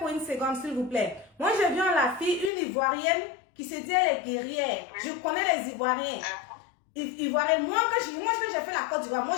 une seconde, s'il vous plaît. Moi, j'ai vu en la fille une Ivoirienne qui se dit elle est guerrière. Je connais les Ivoiriens. Ivoiriens. Moi, quand j'ai fait la Côte d'Ivoire, moi,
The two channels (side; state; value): right; drops out; at 2.5 s